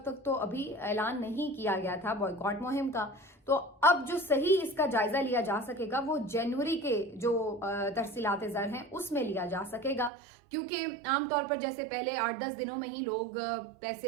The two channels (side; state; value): left; drops out; at 10.1 s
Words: تک تو ابھی اعلان نہیں کیا گیا تھا بوائکاٹ مہم کا. تو اب جو صحیح اس کا جائزہ لیا جا سکے گا وہ جنوری کے جو ترسیلات زر ہیں اس میں لیا جا سکے گا, کیونکہ عام طور پر جیسے پہلے 8-10 دنوں میں ہی لوگ